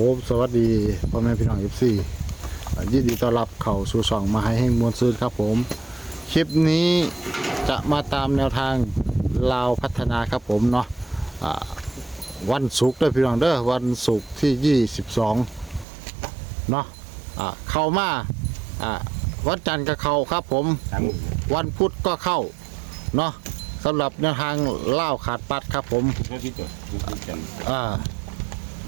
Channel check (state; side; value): drops out; left; at 15.9 s